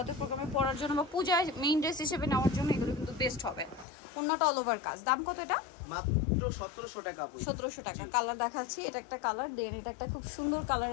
প্রোগ্রামে পরার জন্য বা পূজায় মেইন ড্রেস হিসেবে নেওয়ার জন্য এগুলো কিন্তু বেস্ট হবে। ওন্নাটা অল ওভার কাজ। দাম কত এটা? মাত্র 1700 টাকা। 1700 টাকা। কালার দেখাচ্ছি, এটা একটা কালার, দেন এটা একটা খুব সুন্দর কালার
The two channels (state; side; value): drops out; right; at 3.9 s